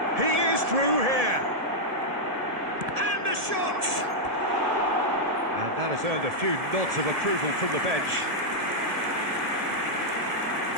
He is through here. And the shot! And that has earned a few nods of approval from the bench.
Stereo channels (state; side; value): late; left; 1.7 ms